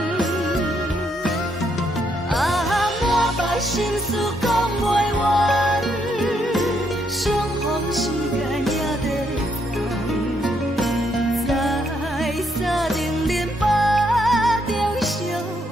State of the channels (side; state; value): both; normal; correlation 0.74